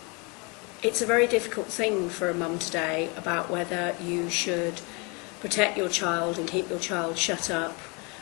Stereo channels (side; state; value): right; quieter; 30.7 dB